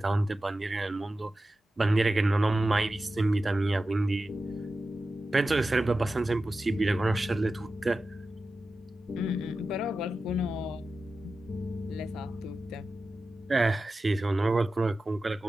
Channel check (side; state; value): both; normal; correlation 0.93